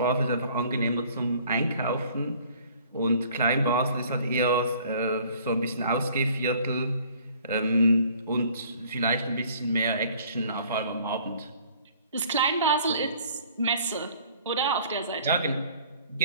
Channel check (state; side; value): inverted; both; correlation -0.55